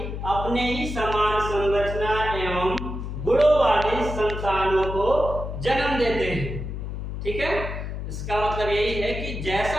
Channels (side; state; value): left; noise; hum, 6 dB below the sound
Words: अपने ही समान संरचना एवं गुणों वाली संतानों को जन्म देते हैं। ठीक है, इसका मतलब यही है कि